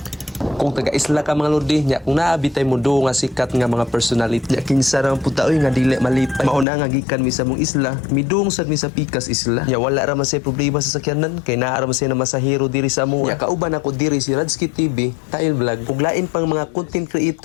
Kung taga-isla ka mga lodi nya kung naabitay mo do nga sikat nga mga personality nya kinsa ra puta oy nga dili malipay mauna nga gikan mi sa mong isla midung sad mi sa pikas isla nya wala ra man say problema sa sakyanan kay naa ra man say na masahero diri sa amo nya kauban ako diri si Radski TV Tail Vlog ug lain pang mga content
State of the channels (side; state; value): right; drops out; at 6.7 s